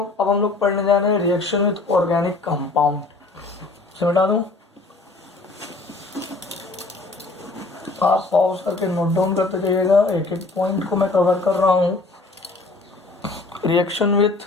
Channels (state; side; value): quieter; right; 3.3 dB